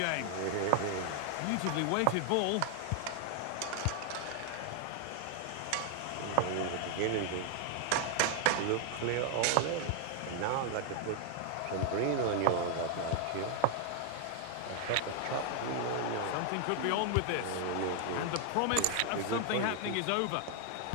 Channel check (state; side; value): different; both; correlation 0.00